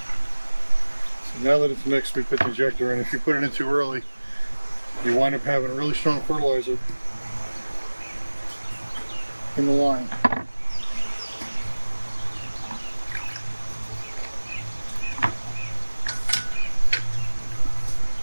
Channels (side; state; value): both; inverted; correlation -1.00